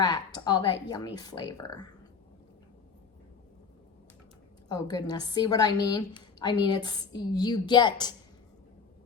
all that yummy flavor. Oh goodness, see what I mean? I mean, it's you get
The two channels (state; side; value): quieter; right; 5.6 dB